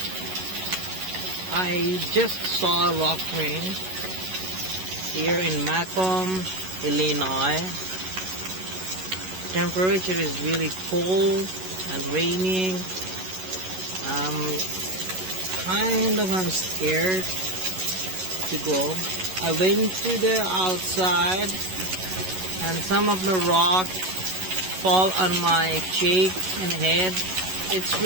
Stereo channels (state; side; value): late; left; 11 ms